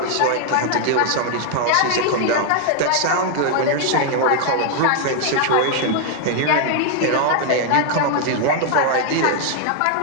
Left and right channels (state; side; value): different; both; correlation 0.00